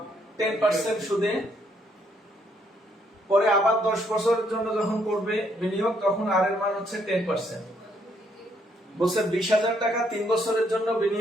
10% সুদে পরে আবার 10 বছরের জন্য যখন করবে বিনিয়োগ, তখন আর এর মান হচ্ছে 10%। বলছে 20,000 টাকা 3 বছরের জন্য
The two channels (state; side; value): normal; both; correlation 0.71